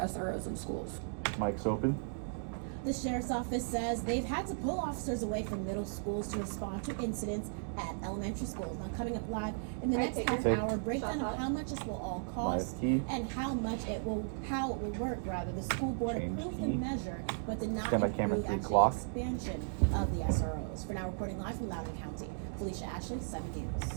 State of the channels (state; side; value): silent; left; digital silence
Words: in schools. Mic's open. The sheriff's office says they've had to pull officers away from middle schools to respond to incidents at elementary schools. Now coming up live in the Alright, next take half it. hour, breakdown Shot of how much this will all cost Live key. and how it will work rather. The school board Change approved key. the measure but did not Stand by camera approve 3 actually clock. expansion of the SROs. For now, reporting live from Loudoun County, Felicia Ashley, 7